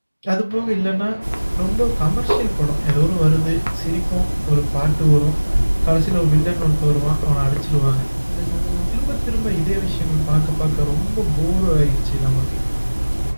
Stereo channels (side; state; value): both; inverted; correlation -1.00